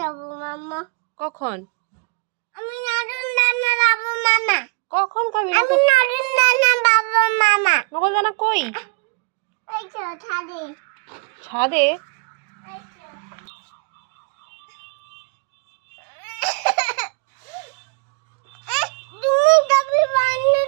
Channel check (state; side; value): quieter; left; 33.1 dB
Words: মামা। কখন আমি নতুন নানা যাবো মামা। কখন খাবি আমি নতুন নানা যাবো মামা। নকল দানা কই ওই তো ছাদে। ছাদে ওই তো। তুমি কবি বান্ধব